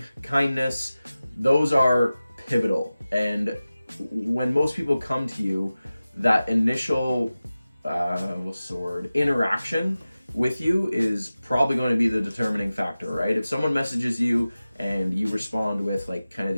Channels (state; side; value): inverted; both; correlation -0.96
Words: kindness, those are pivotal. And when most people come to you, that initial interaction with you is probably going to be the determining factor, right? If someone messages you and you respond with kind of